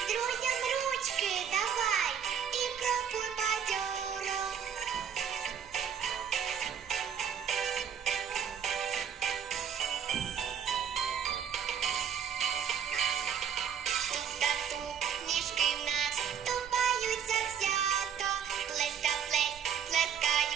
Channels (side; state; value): left; quieter; 8.0 dB